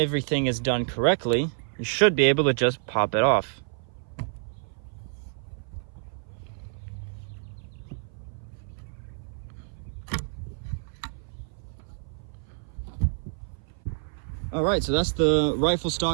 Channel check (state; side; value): silent; left; 56 dB below the other